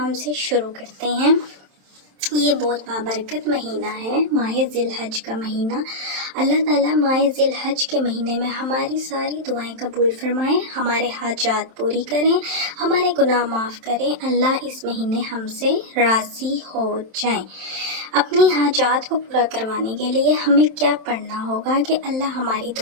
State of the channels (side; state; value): left; late; 27 ms